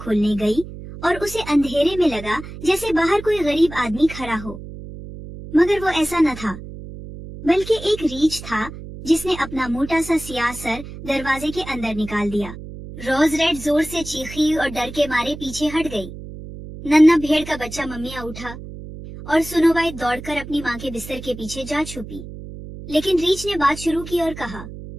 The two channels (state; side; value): noise; right; hum, 12 dB below the sound